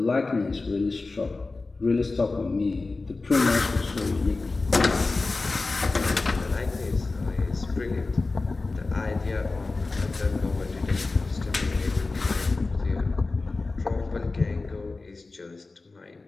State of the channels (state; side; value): quieter; right; 3.6 dB